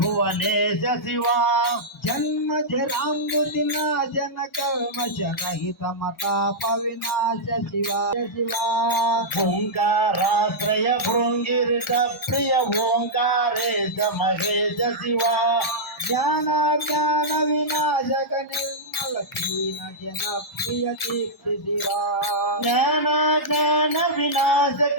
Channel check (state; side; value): normal; both; correlation -0.10